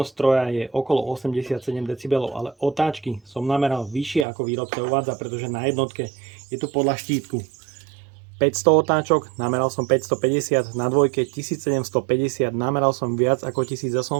stroja je okolo 87 dB, ale otáčky som nameral vyššie ako výrobca uvádza, pretože na jednotke je tu podľa štítku 500 otáčok, nameral som 550, na dvojke 1750, nameral som viac ako 1800,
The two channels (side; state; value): left; drops out; at 4.2 s